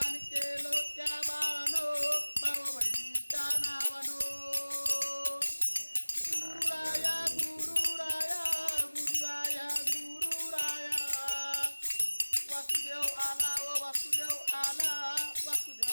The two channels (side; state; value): both; inverted; correlation -1.00